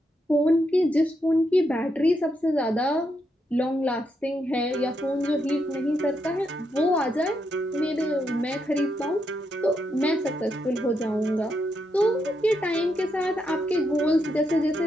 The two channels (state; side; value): normal; both; correlation 0.81